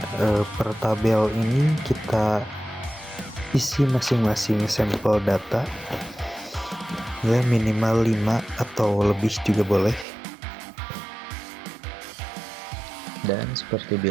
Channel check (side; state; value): left; drops out; at 10.1 s